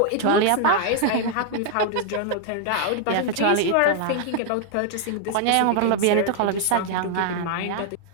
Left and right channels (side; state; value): both; different; correlation 0.00